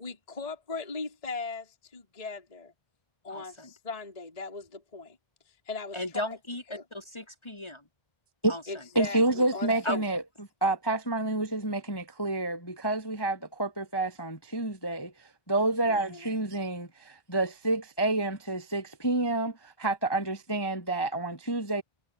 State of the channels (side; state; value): right; late; 1.2 ms